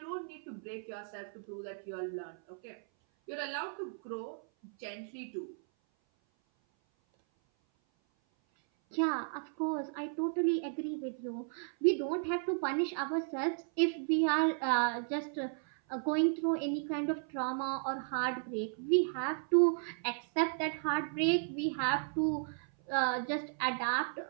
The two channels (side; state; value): left; silent; 55 dB below the other